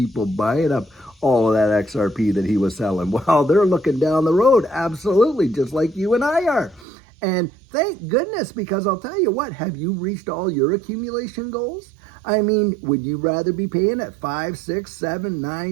buying up all of that XRP that he was selling? Well, they're looking down the road, absolutely, just like you and I are. And thank goodness, because I'll tell you what, have you reached all your accumulation goals? I mean, would you rather be paying at $5, $6, $7,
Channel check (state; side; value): drops out; left; at 6.9 s